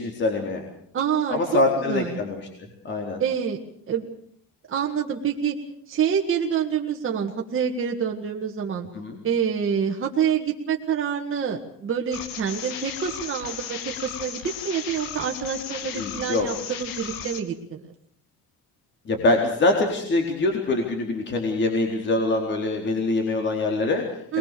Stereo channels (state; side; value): normal; both; correlation 0.15